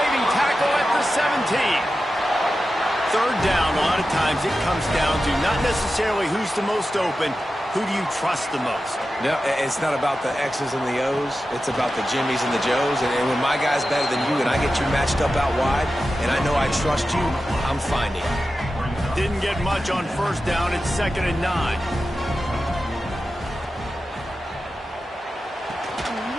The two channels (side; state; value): both; normal; correlation 0.92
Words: tackle at the 17. 3rd down, a lot of times it comes down to not necessarily who's the most open, who do you trust the most? No, it's not about the X's and the O's. It's about the Jimmys and the Joes. And when my guy's better than you and I get you matched up out wide, and I know I trust you, I'm finding it. Didn't get much on 1st down. It's 2nd and 9.